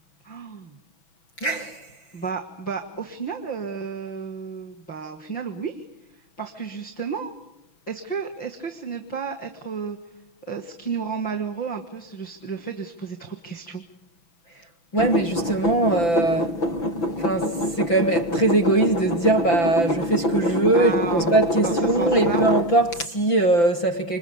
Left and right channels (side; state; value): right; late; 5.9 ms